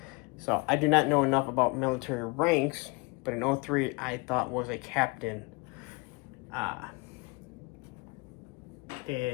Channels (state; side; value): quieter; right; 28.4 dB